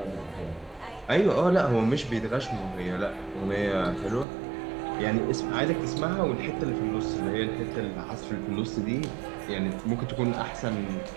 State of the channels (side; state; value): left; drops out; at 4.2 s